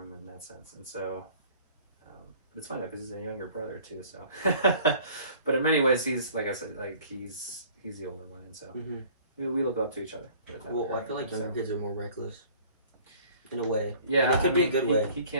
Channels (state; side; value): inverted; both; correlation -0.52